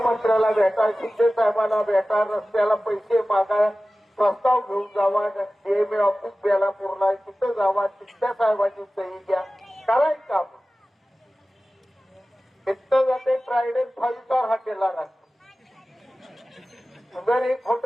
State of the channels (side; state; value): both; normal; correlation 0.96